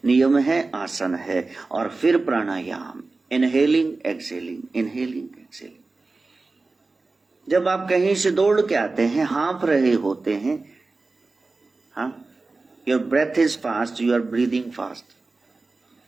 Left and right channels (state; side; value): quieter; left; 3.6 dB